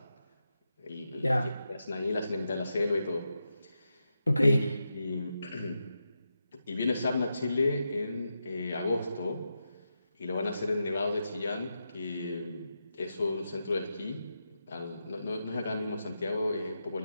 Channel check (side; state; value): both; inverted; correlation -0.87